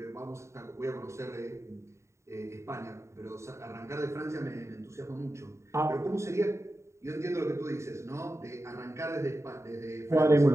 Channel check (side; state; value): left; late; 0.14 ms